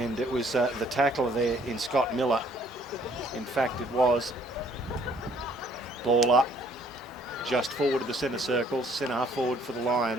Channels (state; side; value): normal; both; correlation 0.61